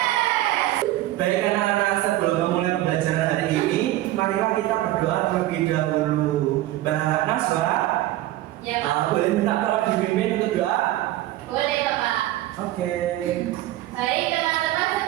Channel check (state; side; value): quieter; left; 15.5 dB